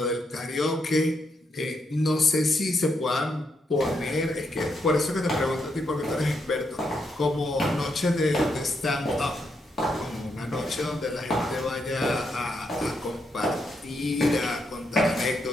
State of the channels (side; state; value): both; normal; correlation 0.80